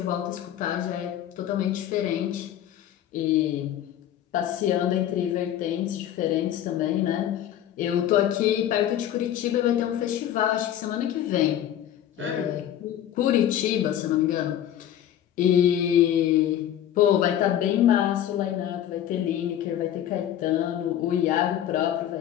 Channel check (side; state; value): right; quieter; 11.1 dB